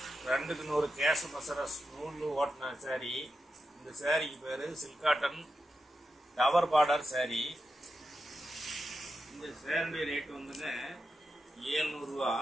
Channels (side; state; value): both; normal; correlation 0.89